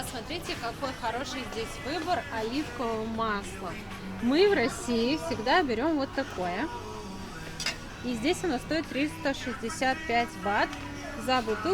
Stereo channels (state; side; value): identical; both; correlation 1.00